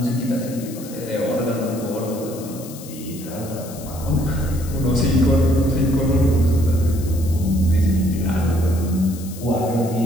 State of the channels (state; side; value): noise; left; hiss, 16 dB below the sound